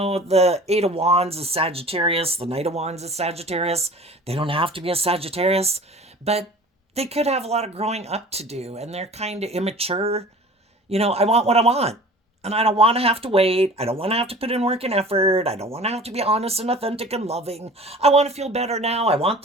Eight of Wands is Sagittarius, the Knight of Wands is Sagittarius. They don't have to be a Sagittarius, but they could have a lot of growing up to do, and they're kind of immature. I want what I want. And I don't want to have to wait. I don't want to have to put in work and effort. I don't want to have to be honest and authentic and loving. I want to feel better now. I want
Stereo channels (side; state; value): both; normal; correlation 0.43